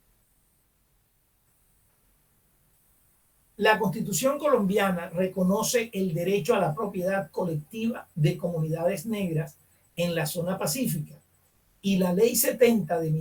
la Constitución colombiana reconoce el derecho a la propiedad colectiva de comunidades negras en la zona pacífica y la Ley 70 de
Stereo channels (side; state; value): both; identical; correlation 1.00